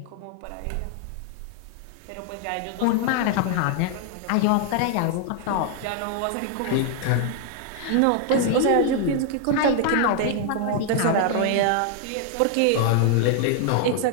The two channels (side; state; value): both; different; correlation 0.00